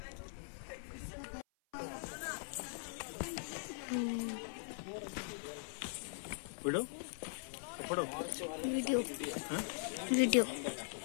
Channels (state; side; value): silent; right; 50 dB below the other